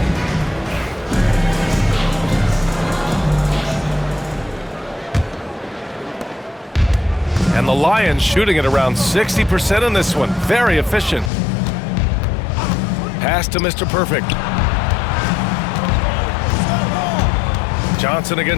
And the Lions shooting at around 60% in this one. Very efficient. Pass to Mr. Perfect. Johnson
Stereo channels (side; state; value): right; drops out; at 11.3 s